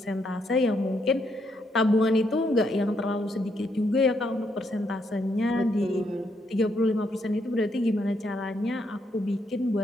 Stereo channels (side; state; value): both; normal; correlation 0.76